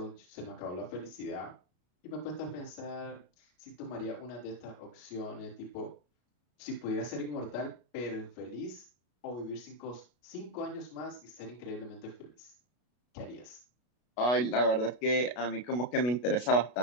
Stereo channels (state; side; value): late; right; 33 ms